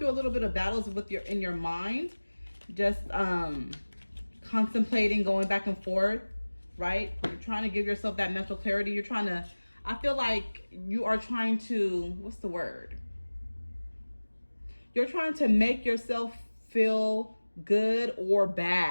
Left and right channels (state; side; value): inverted; both; correlation -1.00